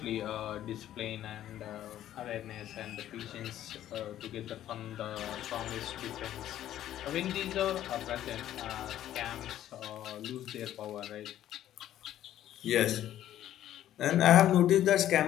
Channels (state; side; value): quieter; right; 12.2 dB